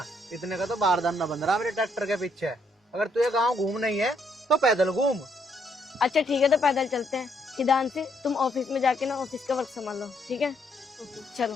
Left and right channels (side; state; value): both; normal; correlation 0.72